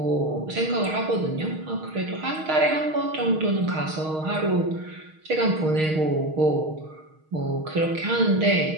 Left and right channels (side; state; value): left; late; 6.4 ms